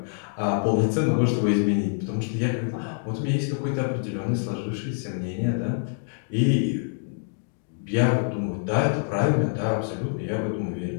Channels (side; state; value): right; silent; 59 dB below the other